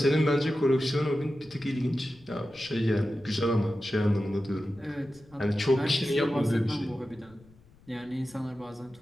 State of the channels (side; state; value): left; noise; rumble, 27 dB below the sound